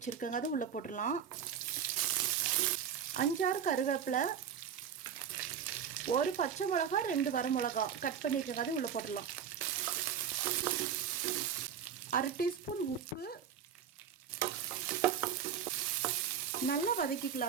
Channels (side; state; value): left; quieter; 8.2 dB